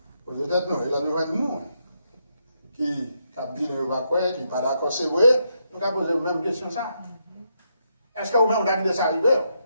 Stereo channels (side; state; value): both; inverted; correlation -0.79